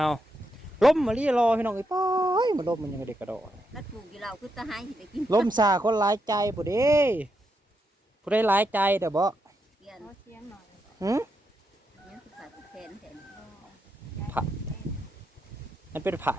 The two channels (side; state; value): both; normal; correlation 0.82